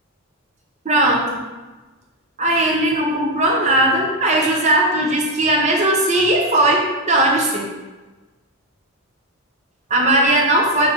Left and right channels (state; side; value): normal; both; correlation 0.03